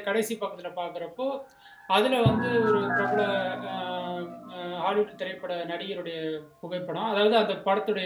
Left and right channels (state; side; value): identical; both; correlation 1.00